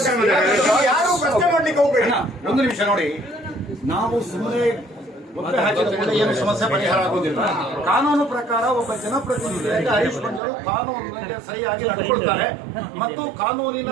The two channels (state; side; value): drops out; left; at 10.4 s